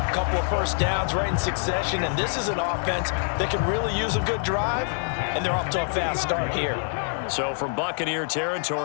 couple of first downs right in succession, and this is an offense that can really use a good drive, and they're off to a fast start here. So from Buccaneer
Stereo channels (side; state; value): right; silent; digital silence